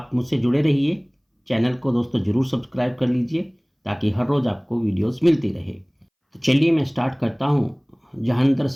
मुझसे जुड़े रहिए। चैनल को दोस्तों ज़रूर सब्सक्राइब कर लीजिए ताकि हर रोज़ आपको वीडियोस मिलती रहे। तो चलिए मैं स्टार्ट करता हूँ जहांगीर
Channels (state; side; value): identical; both; correlation 1.00